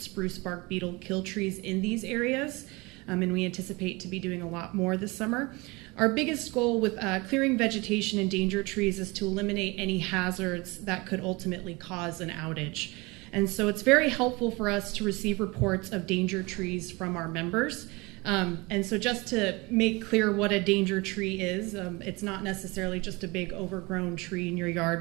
bark beetle kill trees in these areas, and we anticipate to be doing a lot more this summer. Our biggest goal with clearing vegetation and danger trees is to eliminate any hazards that could ultimately cause an outage. And so it's very helpful for us to receive reports of danger trees from our members. And so just to make clear what a danger tree is, it's not necessarily just a big overgrown tree in your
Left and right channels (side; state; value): left; quieter; 25.1 dB